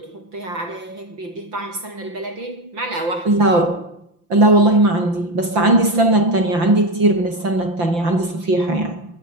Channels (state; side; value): late; left; 5.8 ms